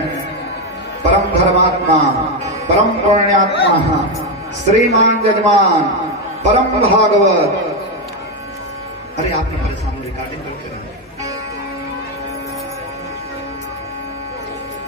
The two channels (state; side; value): normal; both; correlation 0.08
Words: परम धर्मात्मा, परम पुण्यात्मा, श्रीमान जजमान, परम भागवत। अरे आपने परेशान रिकॉर्डिंग करके रहे।